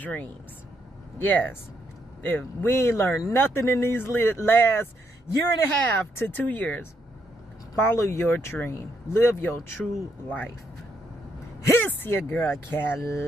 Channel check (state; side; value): normal; both; correlation 0.76